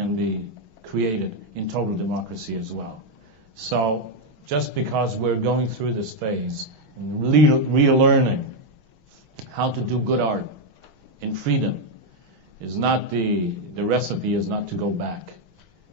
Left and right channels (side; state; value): left; late; 6.3 ms